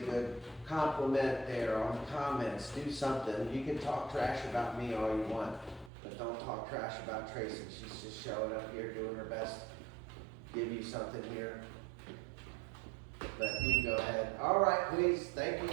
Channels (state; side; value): drops out; left; at 5.9 s